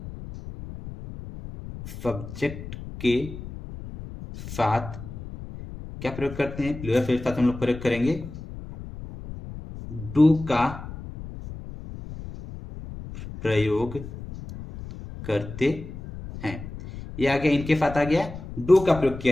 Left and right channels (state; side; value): noise; left; rumble, 12 dB below the sound